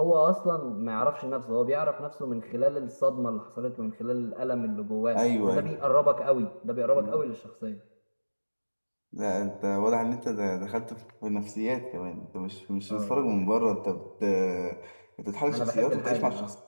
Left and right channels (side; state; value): both; inverted; correlation -1.00